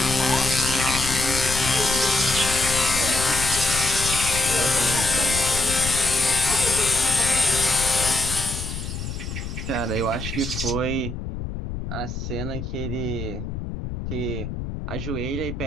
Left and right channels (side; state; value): left; noise; rumble, 7 dB below the sound